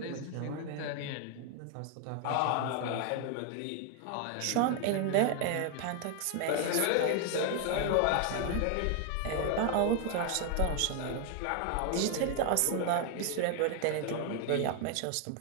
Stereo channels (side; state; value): both; different; correlation 0.01